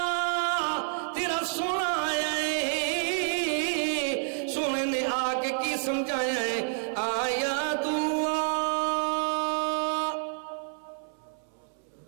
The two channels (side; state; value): left; silent; 59 dB below the other